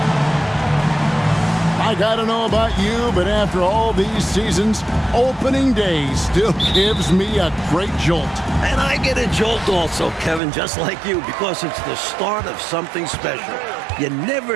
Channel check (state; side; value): drops out; left; at 10.4 s